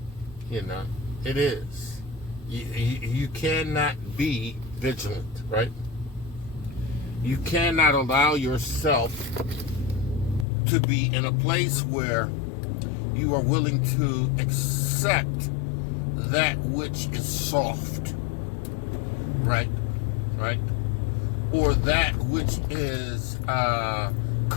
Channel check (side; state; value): right; drops out; at 10.5 s